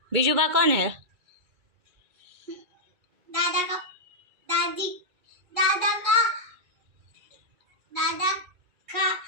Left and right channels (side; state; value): left; late; 2.3 ms